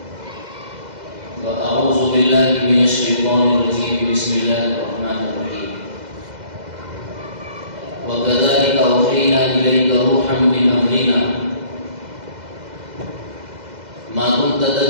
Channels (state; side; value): late; left; 2.0 ms